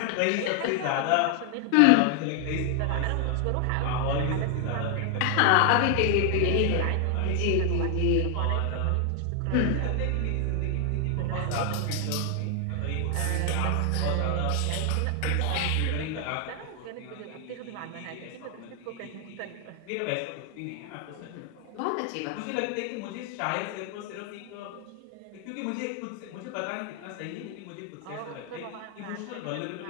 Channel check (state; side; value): different; both; correlation 0.00